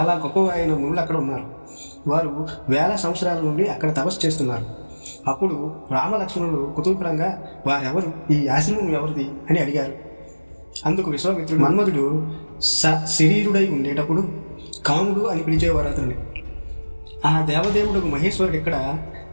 గొప్ప అయిన మునులు అక్కడ ఉన్నారు. వారు 1000 సంవత్సరాల నుండి అక్కడ తపస్సు చేస్తున్నారు. అప్పుడు రామలక్ష్మణులు కుతూహలంగా, వారెవరు, ఈ ఆశ్రమం ఎవరిది అని అడిగారు. అందుకు విశ్వామిత్రుడు, మన్మధుడు శరీరుడై ఉండేటప్పుడు కాముడు అని పిలిచేవారు అతన్ని. ఆ దేవదేవుడు మహేశ్వరుడు ఇక్కడ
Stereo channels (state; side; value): inverted; both; correlation -1.00